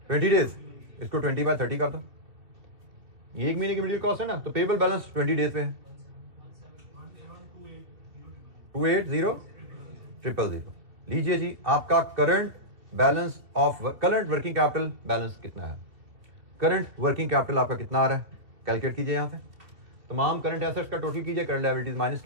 20 डेज। इसको 20/30 कर दो, ये 1 महीने की मटेरियल कॉस्ट है ना, तो पेएबल बैलेंस 20 डेज पे है 280,000। लीजिए जी आपका current balance of current working capital balance कितना है? करंट वर्किंग कैपिटल आपका कितना आ रहा है? कैलकुलेट कीजिए यहां से तमाम करंट एसेट्स का टोटल कीजिए, करंट लायबिलिटीज माइनस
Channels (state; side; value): late; left; 2.7 ms